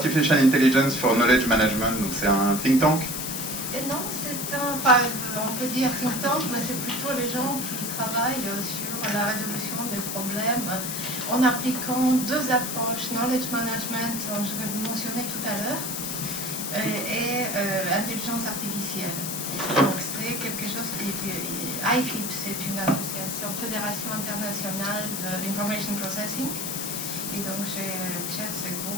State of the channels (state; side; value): noise; left; hiss, 4 dB below the sound